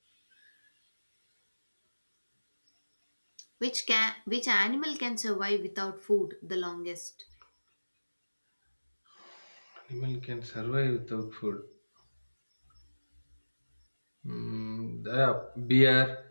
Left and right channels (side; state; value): both; inverted; correlation -1.00